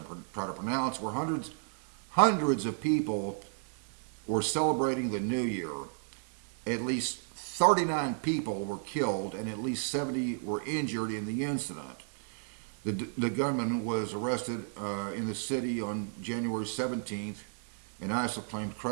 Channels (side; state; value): left; silent; digital silence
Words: try to pronounce, where hundreds of people were celebrating the New Year. At least 39 people were killed and at least 70 were injured in the incident. The gunman was arrested in the city on January 17th, and ISIL claimed